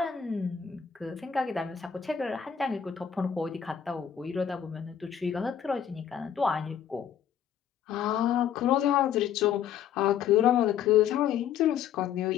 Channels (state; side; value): quieter; right; 8.7 dB